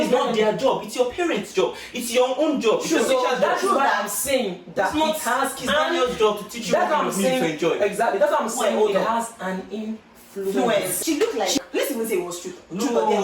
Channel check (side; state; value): both; identical; correlation 1.00